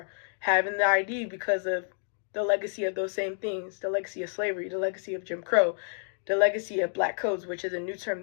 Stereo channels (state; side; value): silent; right; 58 dB below the other